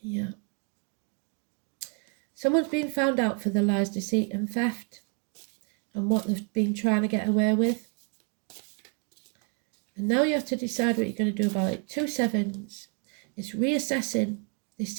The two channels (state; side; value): quieter; left; 37.3 dB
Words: Yeah. Someone's been found out for the lies, deceit and theft and what they've been trying to get away with. And now you have to decide what you're going to do about it. 2 sevens. It's reassessing this